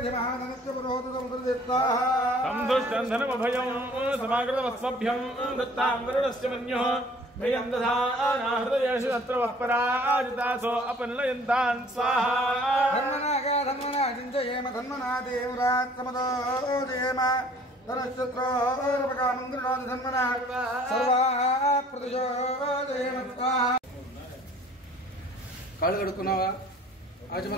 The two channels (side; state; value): both; normal; correlation 0.53